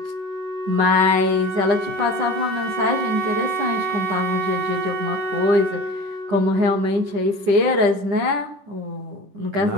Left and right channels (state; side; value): late; left; 10 ms